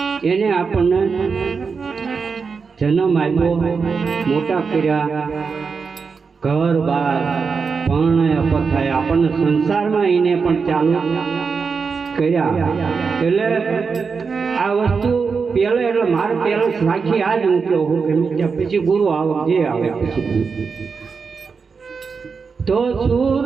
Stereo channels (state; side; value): quieter; left; 5.3 dB